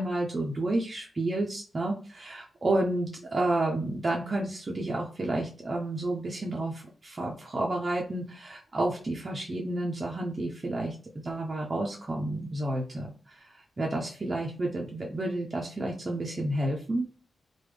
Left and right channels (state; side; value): normal; both; correlation 0.89